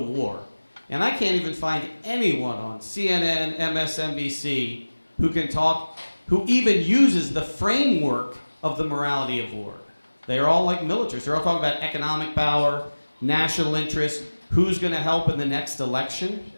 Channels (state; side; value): inverted; both; correlation -1.00